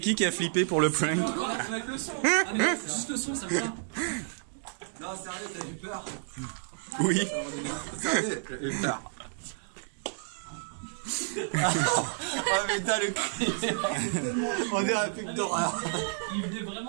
a flippé pour le prank? avec le son. Ah, mais c'est juste le son, ça me va. Non, sérieux, t'as eu peur. Oui. Sérieux, j'ai eu peur. Oh putain, le cri. On dirait un film d'horreur. Il venait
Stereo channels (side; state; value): left; silent; digital silence